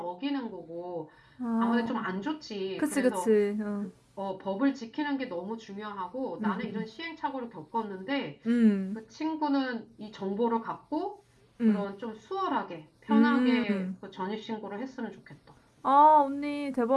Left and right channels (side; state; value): both; identical; correlation 1.00